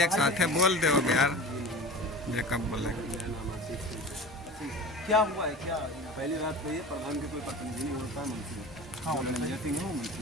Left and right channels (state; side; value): normal; both; correlation 0.35